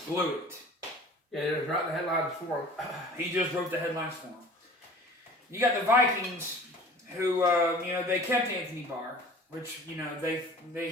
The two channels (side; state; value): both; normal; correlation 0.44